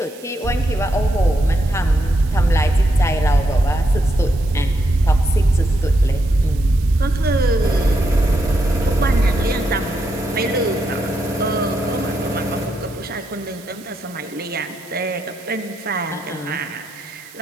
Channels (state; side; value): noise; right; hiss, 21 dB below the sound